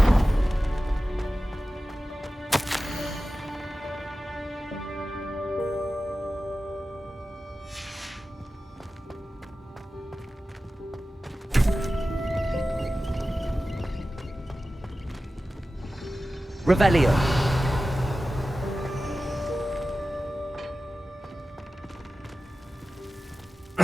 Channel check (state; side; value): normal; both; correlation 0.95